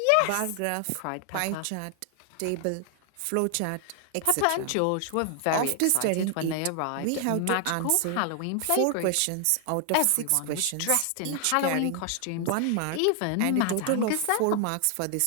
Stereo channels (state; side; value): different; both; correlation 0.00